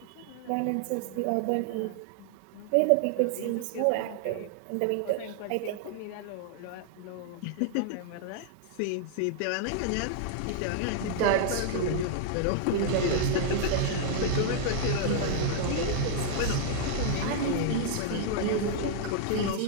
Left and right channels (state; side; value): different; both; correlation -0.01